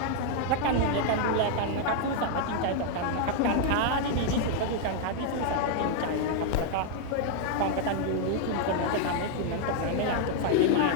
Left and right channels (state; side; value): different; both; correlation 0.00